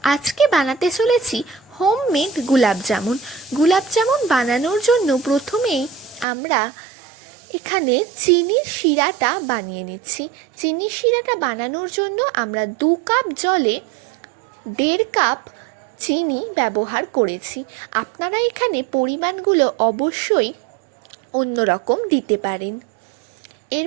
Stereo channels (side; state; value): left; drops out; at 6.2 s